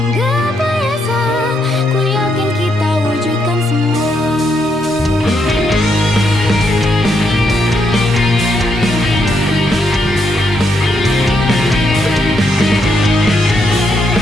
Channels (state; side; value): normal; both; correlation 0.78